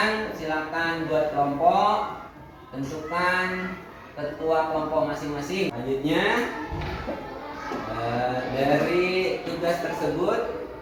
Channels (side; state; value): both; identical; correlation 1.00